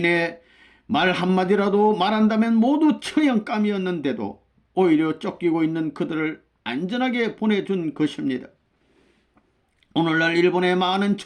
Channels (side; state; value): both; identical; correlation 1.00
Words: 말 한마디라도 말한다면 모두 처형감이었는데도 오히려 쫓기고 있는 그들을 안전하게 보내준 것입니다. 오늘날 일본의 많은